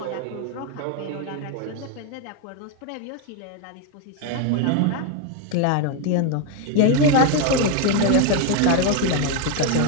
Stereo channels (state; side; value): different; both; correlation 0.01